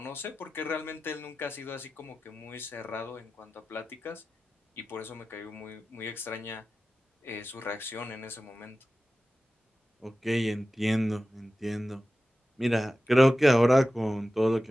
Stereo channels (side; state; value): both; normal; correlation 0.94